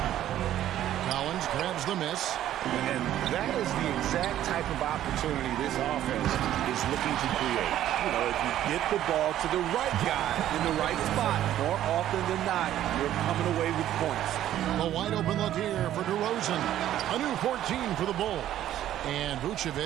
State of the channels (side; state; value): left; quieter; 12.2 dB